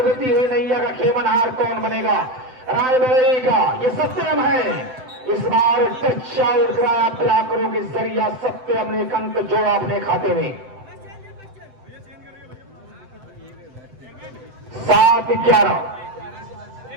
हुई नैया का खेमनहार कौन बनेगा? रायबरेली का ये सत्यम है। इस बार टच आउट कराया ब्लॉकरों के जरिया, सत्यम ने एक अंक जोड़ा अपने खाते में। 7-11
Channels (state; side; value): late; left; 7.8 ms